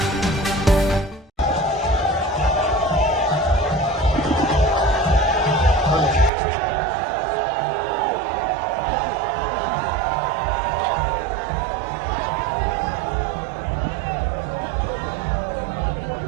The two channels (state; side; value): drops out; left; at 6.3 s